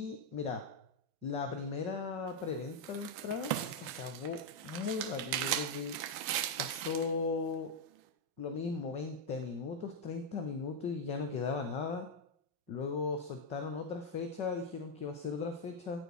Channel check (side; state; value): left; late; 6.5 ms